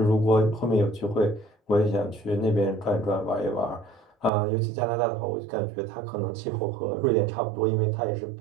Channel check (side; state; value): left; drops out; at 4.3 s